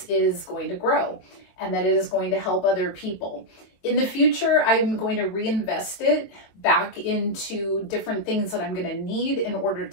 is going to grow and that it is going to help other people. In the future, I'm going to reinvest it back into different things that I'm going to need in order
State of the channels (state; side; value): late; right; 22 ms